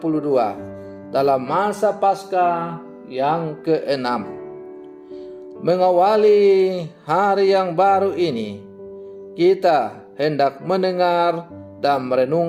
dalam masa Paskah yang ke-6. Mengawali hari yang baru ini, kita hendak mendengar dan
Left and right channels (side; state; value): both; identical; correlation 1.00